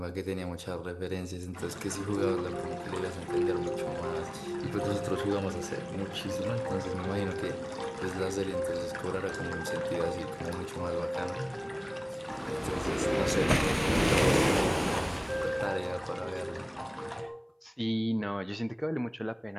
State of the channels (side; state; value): both; identical; correlation 1.00